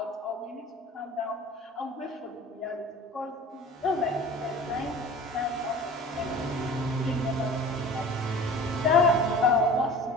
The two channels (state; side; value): normal; both; correlation 0.42